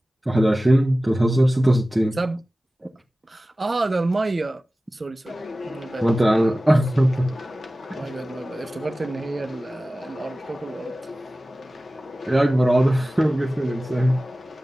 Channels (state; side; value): normal; both; correlation 0.96